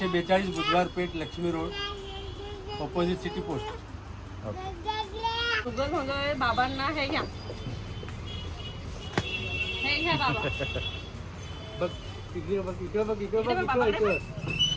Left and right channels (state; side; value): identical; both; correlation 1.00